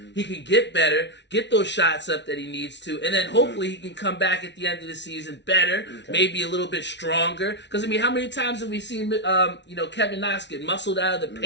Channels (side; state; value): right; late; 0.51 ms